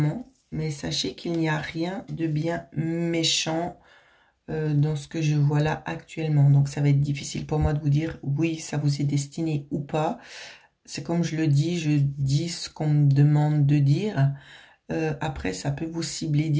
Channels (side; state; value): both; identical; correlation 1.00